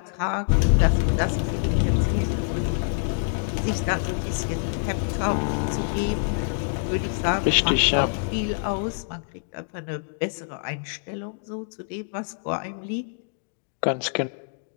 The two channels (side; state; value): right; silent; digital silence